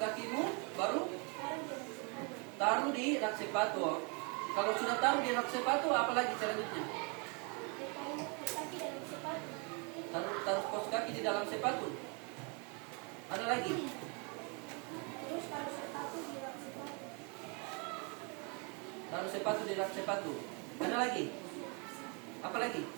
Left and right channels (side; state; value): left; quieter; 34.4 dB